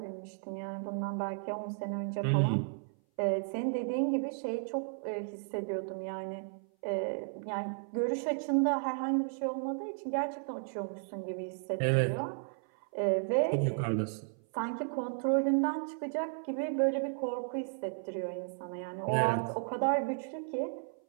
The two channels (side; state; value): left; silent; 55 dB below the other